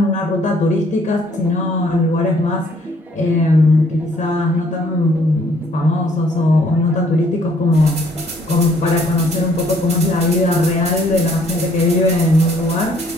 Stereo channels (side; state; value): both; normal; correlation 0.63